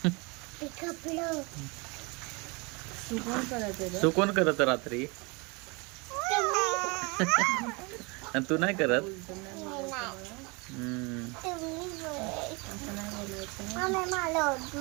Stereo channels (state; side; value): quieter; left; 28.8 dB